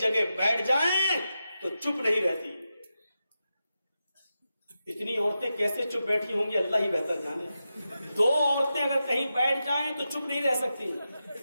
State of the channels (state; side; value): inverted; both; correlation -0.90